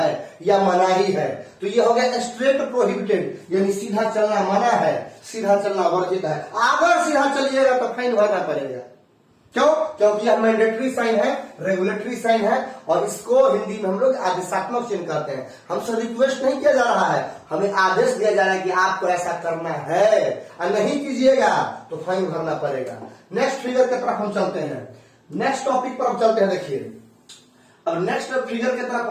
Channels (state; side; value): identical; both; correlation 1.00